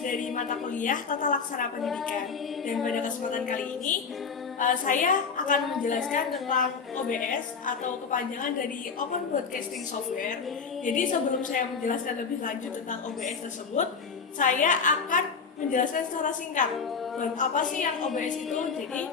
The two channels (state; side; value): quieter; right; 5.6 dB